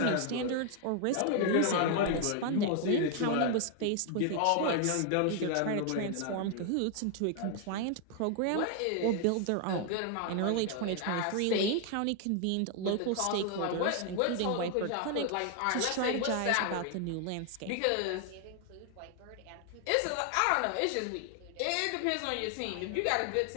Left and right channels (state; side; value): different; both; correlation 0.00